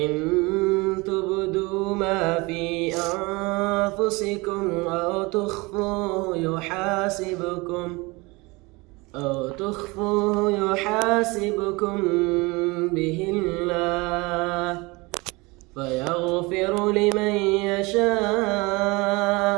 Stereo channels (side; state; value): left; quieter; 24.8 dB